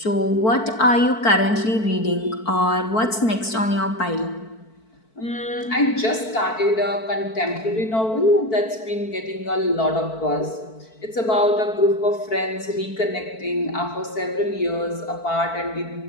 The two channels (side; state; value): right; late; 4.5 ms